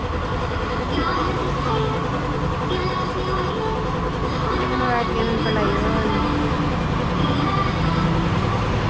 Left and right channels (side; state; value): both; identical; correlation 1.00